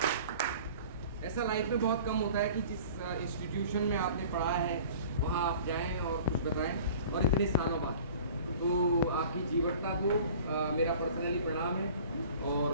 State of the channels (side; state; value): both; inverted; correlation -0.46